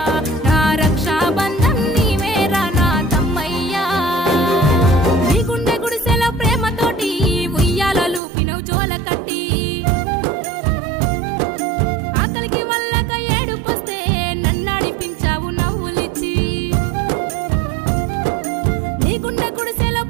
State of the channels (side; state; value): left; drops out; at 8.2 s